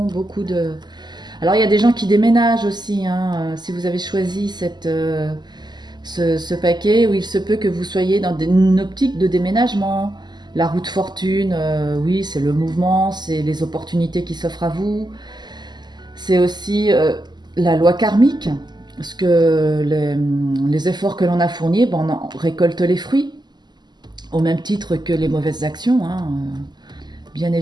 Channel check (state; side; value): late; left; 0.21 ms